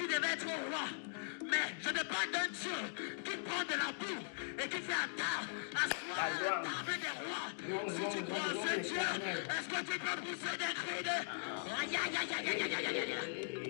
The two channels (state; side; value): silent; right; digital silence